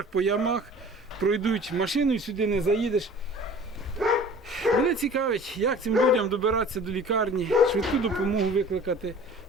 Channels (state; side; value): normal; both; correlation 0.45